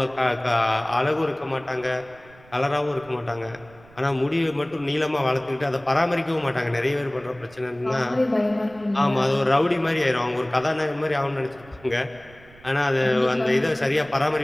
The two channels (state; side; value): noise; right; rumble, 25 dB below the sound